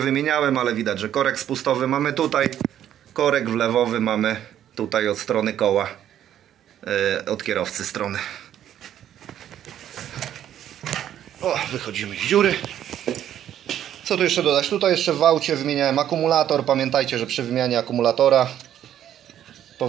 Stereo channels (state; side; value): quieter; left; 10.8 dB